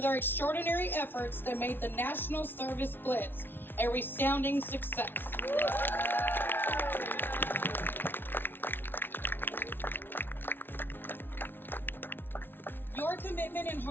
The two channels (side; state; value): right; late; 0.10 ms